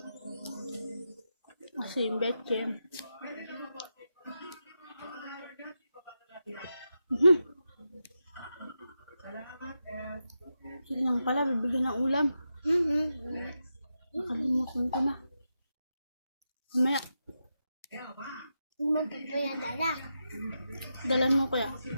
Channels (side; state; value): both; inverted; correlation -0.88